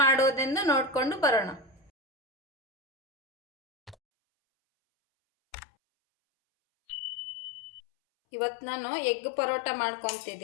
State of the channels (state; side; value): drops out; right; at 4.0 s